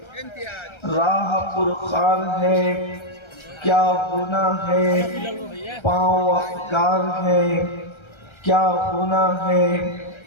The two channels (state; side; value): late; right; 1.3 ms